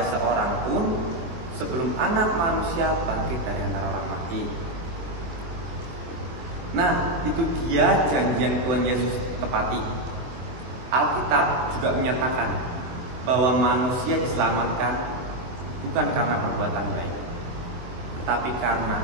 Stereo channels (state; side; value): late; left; 23 ms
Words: seorang pun sebelum Anak Manusia bangkit dari antara orang mati. Nah, itu dia janji yang Tuhan Yesus tepati. Alkitab juga menyatakan bahwa manusia diselamatkan bukan karena perbuatan baik, tetapi karena